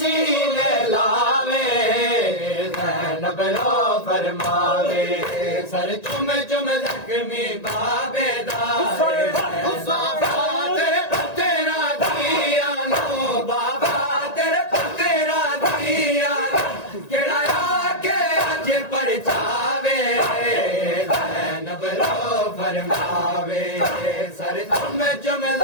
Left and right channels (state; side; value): late; right; 1.9 ms